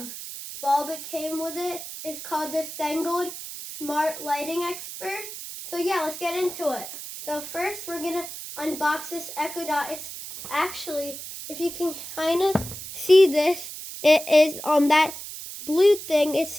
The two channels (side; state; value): right; noise; hiss, 10 dB below the sound